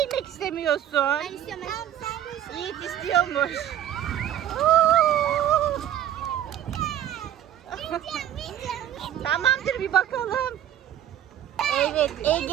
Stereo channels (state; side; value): quieter; left; 11.3 dB